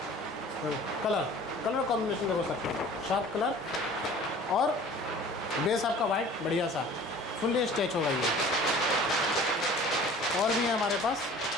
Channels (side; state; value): both; normal; correlation 0.46